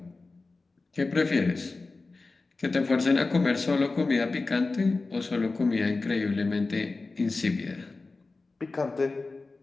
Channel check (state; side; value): quieter; right; 3.6 dB